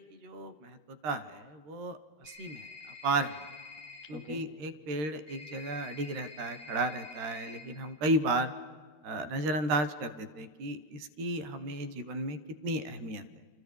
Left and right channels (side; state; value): left; late; 13 ms